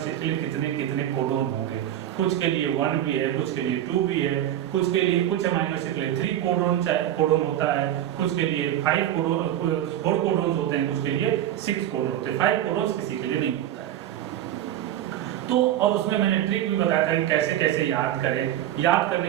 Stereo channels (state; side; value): quieter; left; 11.9 dB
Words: के लिए कितने कितने कोडोन होंगे. कुछ के लिए 1 भी है, कुछ के लिए 2 भी है, कुछ के लिए, कुछ अमाइनो एसिड के लिए 3 कोडोन होता है, कुछ के लिए 4 कोडोन होते हैं, कुछ के लिए 6 कोडोन होते हैं. 5 कोडोन किसी के लिए नहीं होता है. तो और उसमें मैंने ट्रिक भी बताया था कि कैसे कैसे याद करें. याद